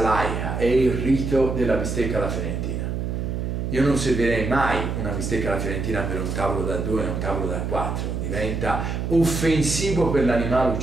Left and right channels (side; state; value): right; noise; hum, 2 dB below the sound